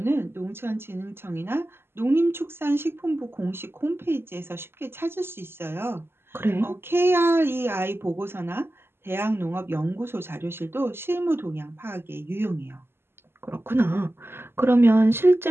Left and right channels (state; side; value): late; left; 0.11 ms